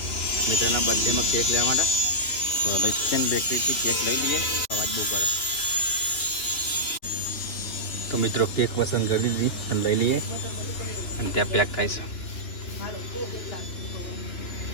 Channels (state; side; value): late; right; 2.9 ms